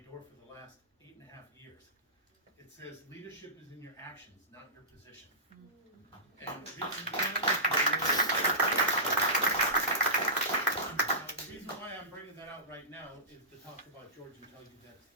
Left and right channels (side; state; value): both; normal; correlation -0.19